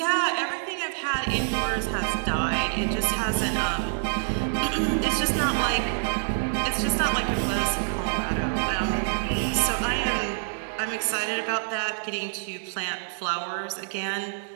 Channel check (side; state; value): left; silent; digital silence